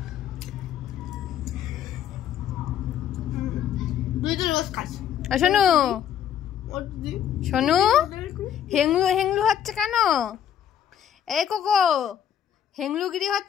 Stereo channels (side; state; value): right; quieter; 9.6 dB